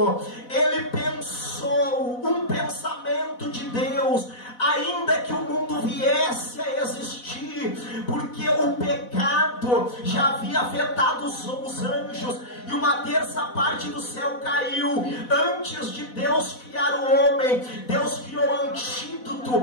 ele pensou um pensamento de Deus, ainda que o mundo viesse a existir, porque o pecado já havia afetado os anjos, e uma terça parte do céu caiu. Antes de Deus criar o homem, Deus criou o antídoto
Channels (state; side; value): late; right; 4.1 ms